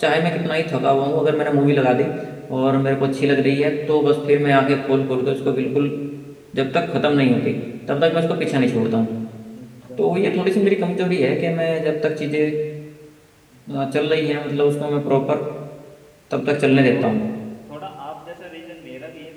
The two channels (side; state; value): both; identical; correlation 1.00